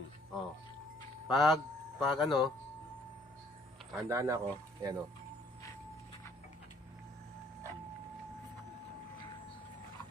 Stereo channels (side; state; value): both; normal; correlation 0.62